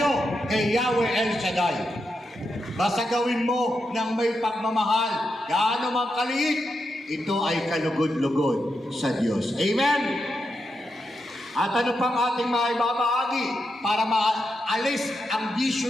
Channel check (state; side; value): normal; both; correlation 0.85